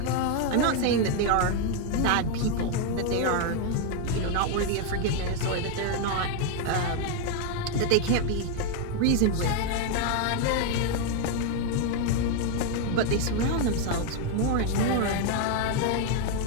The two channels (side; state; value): both; different; correlation 0.01